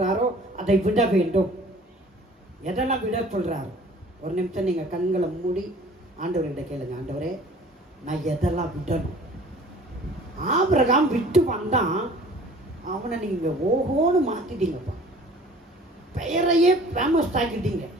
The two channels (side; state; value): both; normal; correlation 0.49